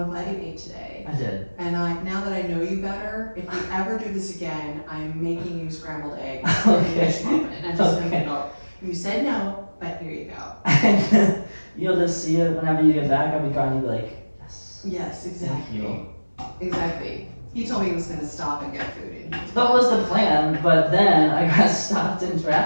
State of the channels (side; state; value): both; inverted; correlation -1.00